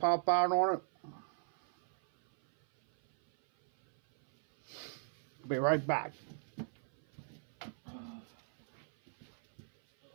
out on it? Be right back.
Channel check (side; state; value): left; silent; 53 dB below the other